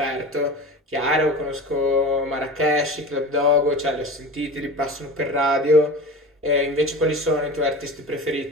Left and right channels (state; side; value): normal; both; correlation 0.32